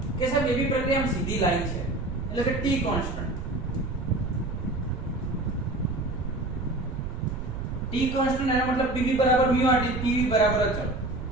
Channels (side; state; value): right; noise; rumble, 6 dB below the sound